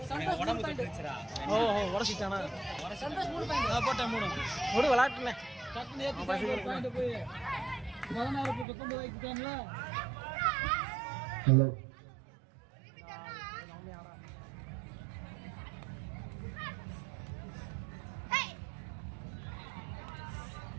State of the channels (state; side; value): drops out; left; at 8.7 s